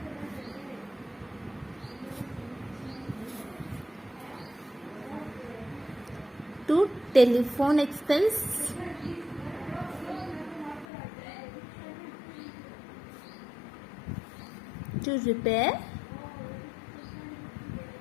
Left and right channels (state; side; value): drops out; right; at 10.9 s